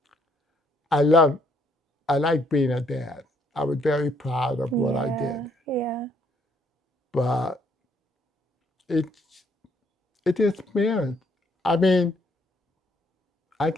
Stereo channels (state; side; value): normal; both; correlation 0.69